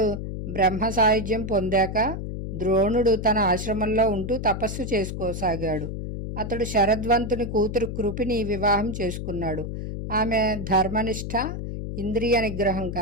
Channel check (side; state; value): left; noise; hum, 6 dB below the sound